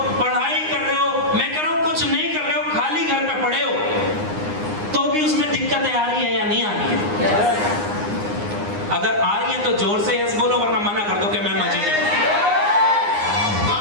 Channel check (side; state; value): left; late; 9.7 ms